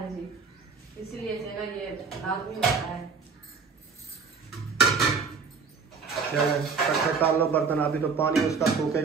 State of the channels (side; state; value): left; quieter; 5.2 dB